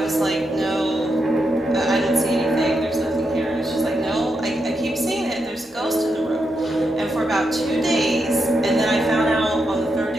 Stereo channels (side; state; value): both; normal; correlation 0.84